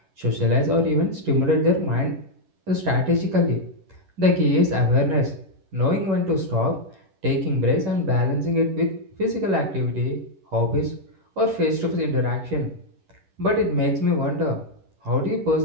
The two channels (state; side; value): late; left; 11 ms